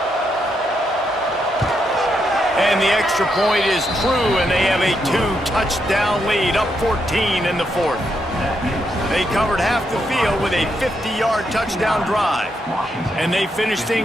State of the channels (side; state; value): both; normal; correlation 0.80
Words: And the extra point is true, and they have a 2-touchdown lead, up 14 in the fourth. They covered half the field with a 50-yard touchdown drive. And they finished